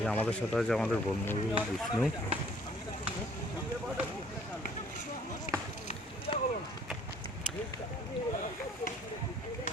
আমাদের সাথে আছে আমাদের বন্ধু বিষ্ণু।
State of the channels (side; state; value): both; normal; correlation 0.57